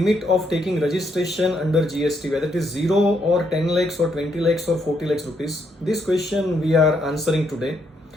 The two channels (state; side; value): normal; both; correlation 0.75